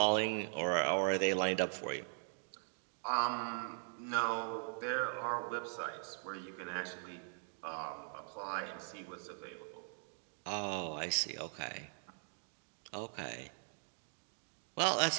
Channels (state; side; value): silent; left; digital silence